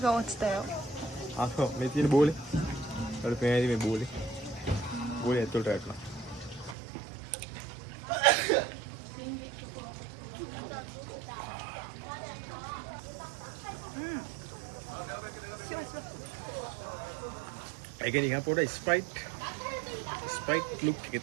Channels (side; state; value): left; drops out; at 6.8 s